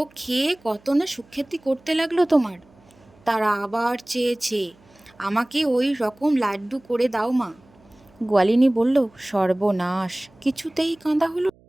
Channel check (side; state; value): right; noise; hum, 29 dB below the sound